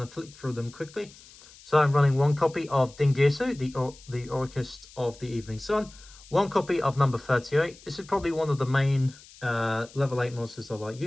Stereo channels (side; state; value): left; noise; hiss, 22 dB below the sound